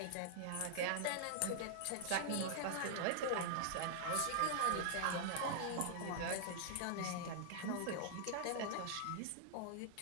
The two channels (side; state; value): both; different; correlation -0.01